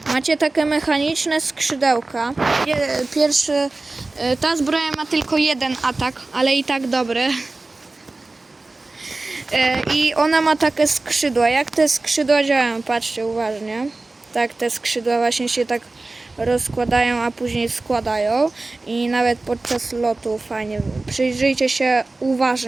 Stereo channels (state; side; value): quieter; left; 3.3 dB